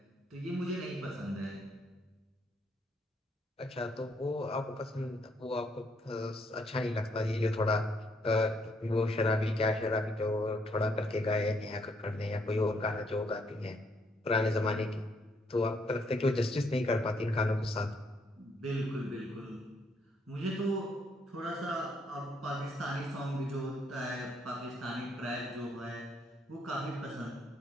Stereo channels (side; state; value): both; normal; correlation 0.72